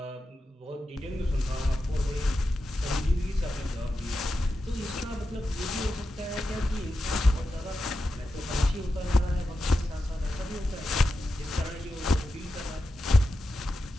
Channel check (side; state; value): both; normal; correlation 0.90